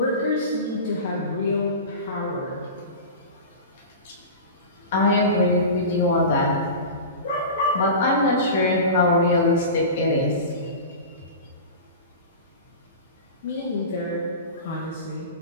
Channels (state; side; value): inverted; both; correlation -0.30